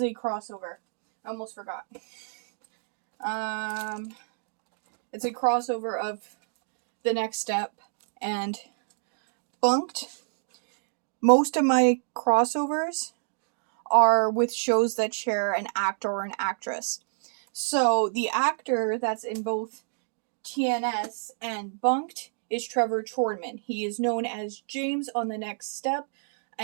a crossover. I almost forgot. It's a crossover of The Next Step and Bunked. Most of my crossovers are with shows that share an actor or an actress. So the actor that's in both TNS and Bunked is Trevor Chornman. He is known as James on The Next Step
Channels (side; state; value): left; silent; digital silence